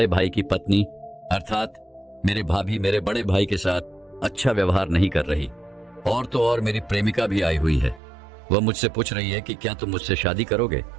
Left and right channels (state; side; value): drops out; left; at 8.0 s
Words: भाई की पत्नी अर्थात मेरे भाभी मेरे बड़े भाई के साथ अच्छा व्यवहार नहीं कर रही, और तो और मेरी प्रेमिका भी आई हुई है। वह मुझसे पूछ रही है कि क्या तुम मुझसे शादी करोगे